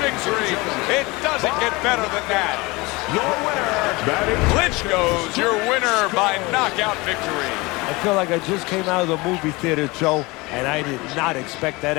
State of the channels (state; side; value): quieter; right; 23.8 dB